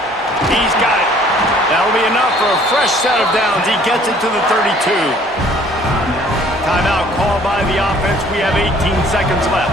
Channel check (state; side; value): normal; both; correlation 0.56